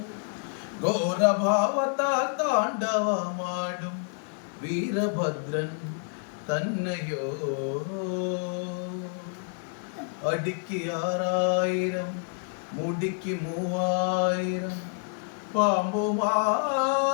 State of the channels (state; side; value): silent; right; 59 dB below the other